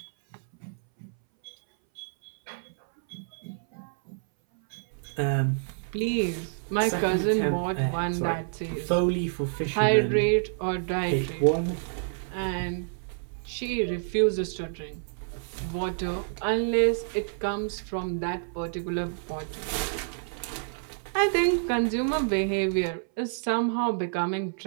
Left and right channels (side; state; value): left; silent; 59 dB below the other